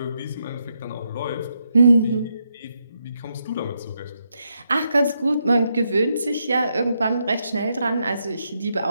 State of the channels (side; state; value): both; inverted; correlation -0.80